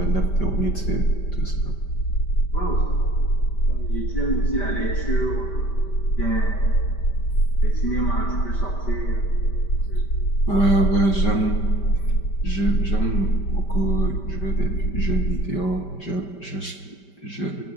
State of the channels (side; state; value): right; late; 5.1 ms